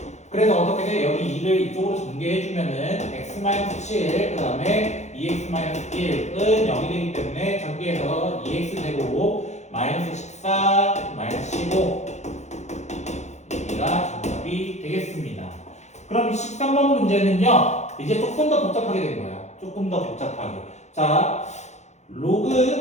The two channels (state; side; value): late; right; 0.33 ms